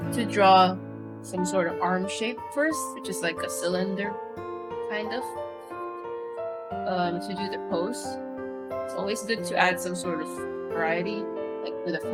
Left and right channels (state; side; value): identical; both; correlation 1.00